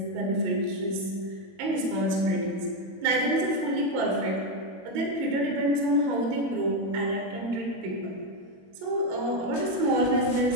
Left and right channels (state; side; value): late; left; 22 ms